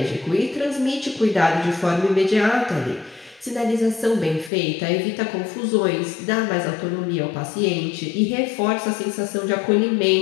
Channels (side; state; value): right; drops out; at 4.5 s